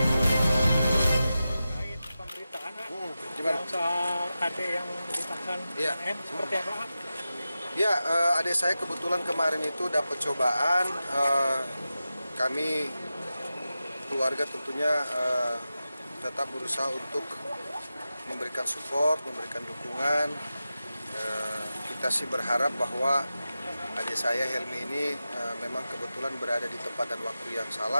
Pemberitaan Gimana? soal adik yang ditahan Iya. seperti apa? Ya, adik saya kebetulan kemarin itu dapat cobaan. Kami keluarga tentunya tetap berusaha untuk memberikan support, memberikan dukungan. Kita sih berharap bahwa adik saya Helmi ini memang kebetulan berada di tempat dan waktu yang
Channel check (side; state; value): both; inverted; correlation -0.93